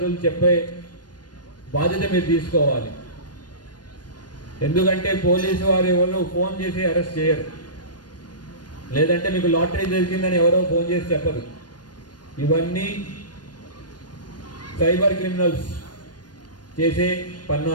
చెప్పే బాధ్యత మీరు తీసుకోవాలి. ఎందుకంటే పోలీసు వారు ఎవరు ఫోన్ చేసి అరెస్ట్ చేయరు, లేదంటే మీకు లాటరీ దొరికిందని ఎవరో ఫోన్ చేసి చెప్పరు. ఇవన్నీ సైబర్ క్రిమినల్స్ చేసే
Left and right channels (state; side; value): late; right; 0.69 ms